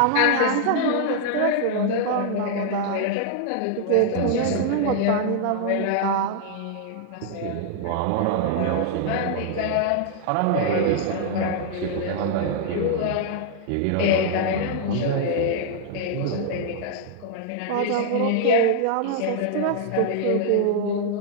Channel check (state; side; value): different; both; correlation -0.01